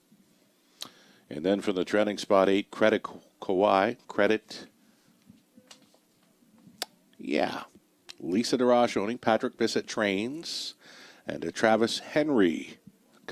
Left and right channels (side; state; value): both; identical; correlation 1.00